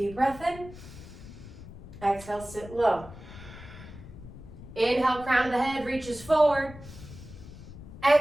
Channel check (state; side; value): noise; left; rumble, 15 dB below the sound